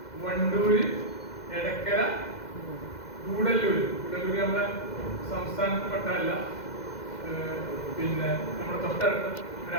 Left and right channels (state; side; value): late; right; 2.1 ms